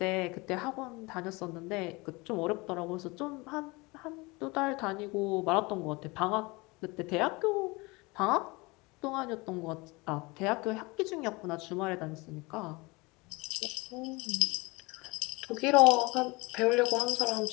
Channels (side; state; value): right; quieter; 24.9 dB